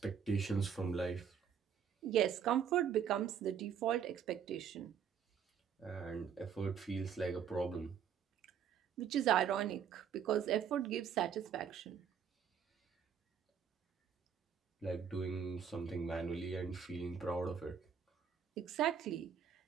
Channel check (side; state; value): left; quieter; 7.7 dB